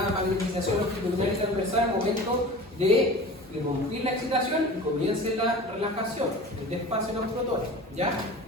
magnetización longitudinal y transversal al momento de interrumpir la excitación y comience la relajación, el despacio de los protones, ¿ya?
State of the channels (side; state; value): both; normal; correlation 0.37